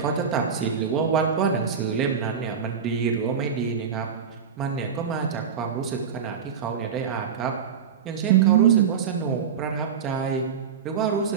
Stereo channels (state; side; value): quieter; left; 7.1 dB